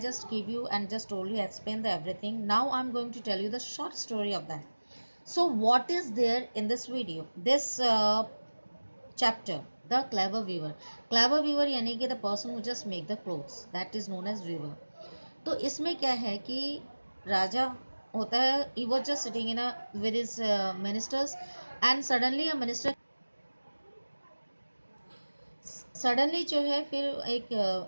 gave you and just told you, explain the everything. Now, I'm going to tell you the short story of that. So, what is there in this video? This chapter, the clever weaver. Clever weaver यानी कि the person who just make the clothes. That is known as weaver. तो इसमें क्या है कि राजा होता है, he was just sitting in a with his ministers and suddenly जो है फिर एक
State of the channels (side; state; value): both; inverted; correlation -1.00